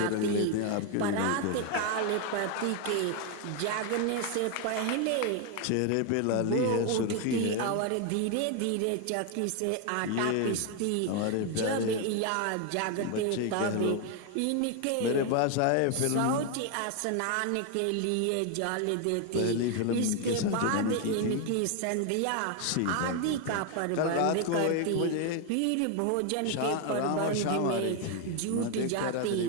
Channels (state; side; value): different; both; correlation 0.01